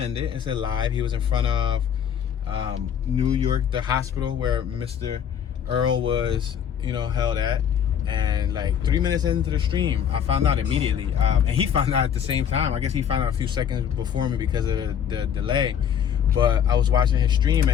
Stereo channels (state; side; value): quieter; right; 8.5 dB